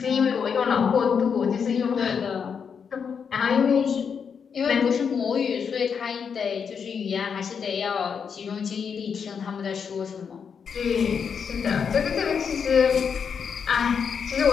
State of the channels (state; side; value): quieter; right; 6.6 dB